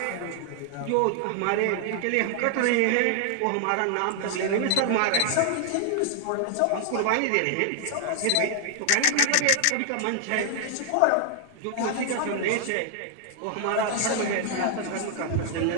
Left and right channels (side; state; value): both; different; correlation 0.00